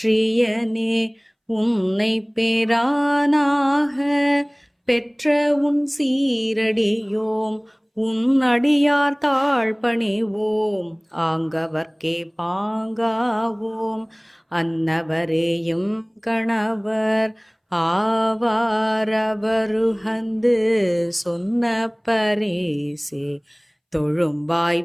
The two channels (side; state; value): both; identical; correlation 1.00